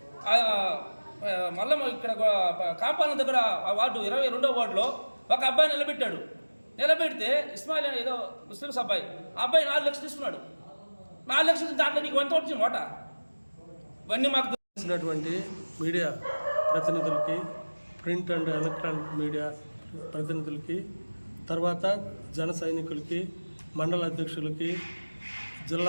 మళ్ళీ ఇక్కడ కాంపాలన దగ్గర వార్డు 22వ వార్డులో ఒక అబ్బాయి నిలబెడితే ఇస్మాయిల్ ఏదో ముస్లిమ్స్ అబ్బాయి, ఆ అబ్బాయి 4 లక్షలు తీసుకున్నాడు. 4 లక్షలు దాంట్లో నీకు ఎంత వచ్చింది ఓట? ఇవన్నీ మాకు తెలిసినటువంటి మీడియా ప్రతినిధులకి, ప్రింట్ అండ్ ఎలక్ట్రానిక్ మీడియా ప్రతినిధులకి, తర్వాత జన సైనికులకి, మండల అధ్యక్షులకి,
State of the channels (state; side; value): inverted; both; correlation -1.00